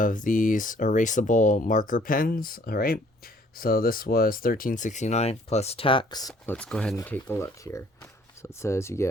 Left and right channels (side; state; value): both; normal; correlation 0.59